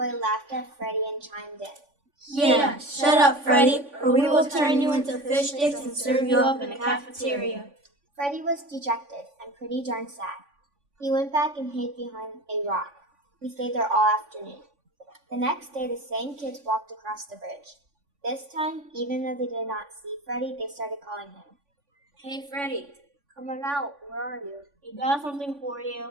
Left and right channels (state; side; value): late; left; 3.5 ms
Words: laughed at Freddy and chimed in. Yeah, shut up, Freddy, or we will turn you into fish sticks and serve you up in the cafeteria. Freddy was dejected and pretty darn sad. He went back and hid behind a rock. He stayed there all afternoon. The next day, the same kids walked across the bridge. This time, even though they did not see Freddy, they started calling him. Hey, Freddy. Come on out, where are you? We got something for you.